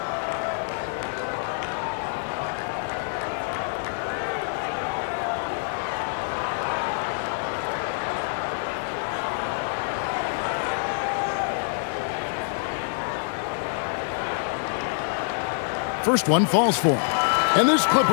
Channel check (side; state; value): right; silent; digital silence